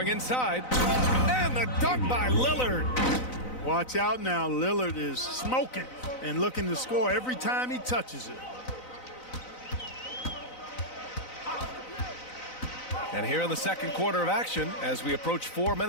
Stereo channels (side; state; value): right; late; 4.0 ms